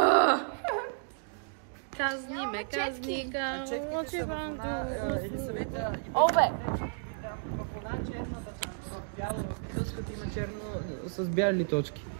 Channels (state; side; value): silent; left; digital silence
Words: Казни ме, казни, Четките са в една или съвета... Обе! В една черната там, в бяло, в има черно с бяли точки.